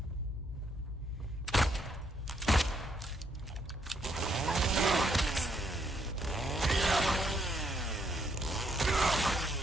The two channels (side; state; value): both; normal; correlation 0.73